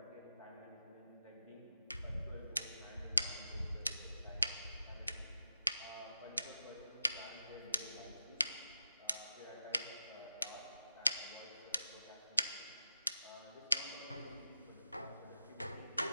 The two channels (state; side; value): inverted; both; correlation -0.86